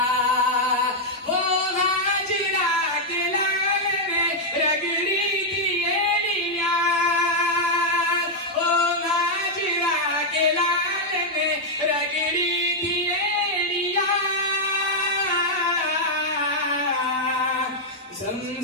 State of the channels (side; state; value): both; normal; correlation -0.03